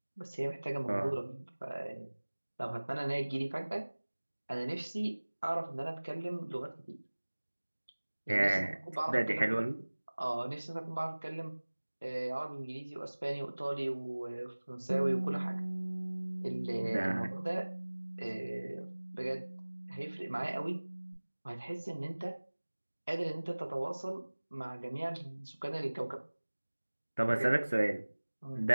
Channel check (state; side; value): inverted; both; correlation -1.00